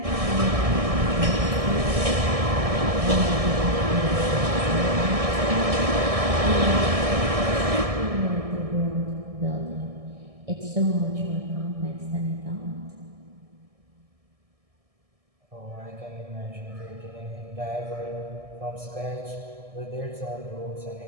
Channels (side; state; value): left; late; 1.6 ms